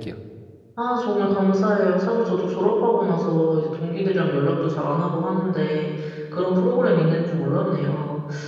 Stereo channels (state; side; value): identical; both; correlation 1.00